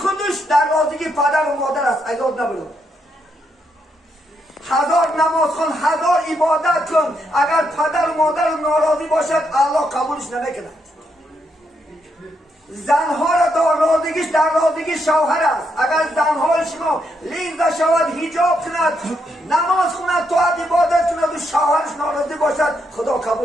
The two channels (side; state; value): both; normal; correlation 0.79